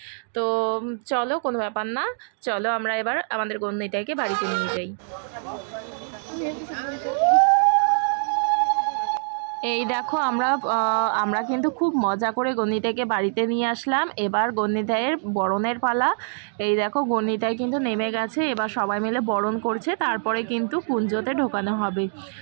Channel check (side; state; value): left; silent; digital silence